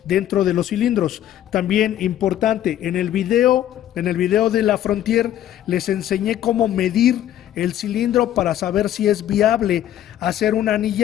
dentro de los cilindros. También importante, en el video de la Frontier les enseñé cómo medir el cilindro para saber si es viable hacer una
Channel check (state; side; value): quieter; right; 11.7 dB